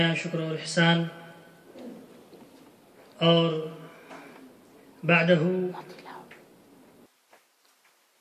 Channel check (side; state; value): both; identical; correlation 1.00